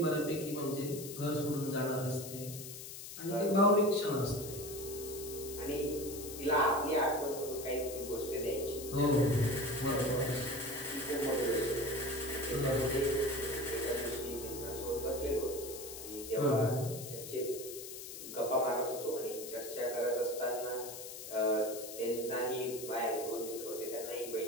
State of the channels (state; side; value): noise; left; hiss, 10 dB below the sound